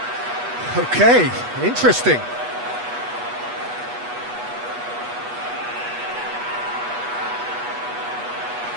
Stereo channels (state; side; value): late; left; 8.2 ms